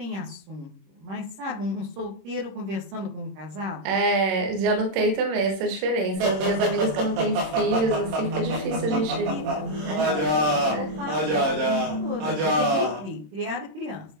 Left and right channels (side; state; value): left; late; 26 ms